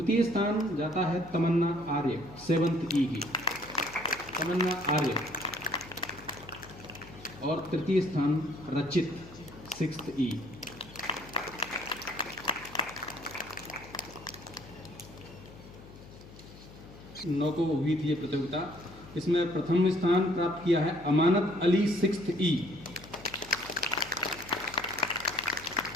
स्थान जाता है तमन्ना आर्य 7th E की, तमन्ना आर्य। और तृतीय स्थान रचित 6th E। नौ को हुई थी ये प्रतियोगिता। इसमें प्रथम स्थान प्राप्त किया है अमानत अली 6th E,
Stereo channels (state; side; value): noise; left; hum, 19 dB below the sound